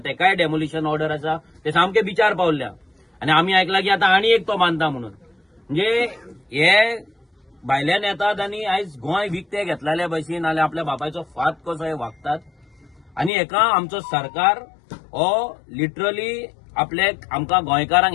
डेमोलिशन ऑर्डर आसा, ते सामके बिचार पावल्या. आणि आमी आयकलां की आतां आनी एक तो बांदता म्हणून. म्हणजे हे भायल्यान येतात आणि आयज गोंय विकते घेतलेल्या भशेन नाल्यार आपल्या बापायचो फात कसो हे वागतात. आणि हेका आमचो सरकार हो लिटरली आमकां गोंयकारांक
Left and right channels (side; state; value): right; drops out; at 13.3 s